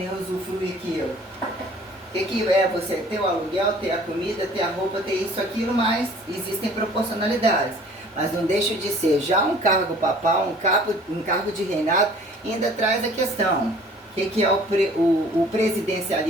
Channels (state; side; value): normal; both; correlation 0.51